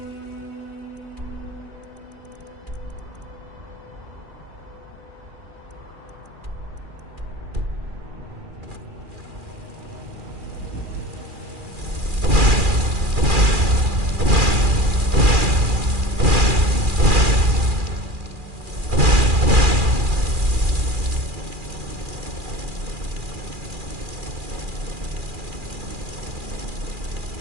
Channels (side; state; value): left; late; 2.4 ms